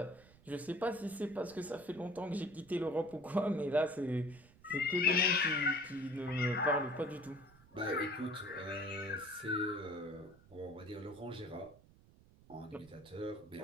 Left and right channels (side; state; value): right; noise; rumble, 25 dB below the sound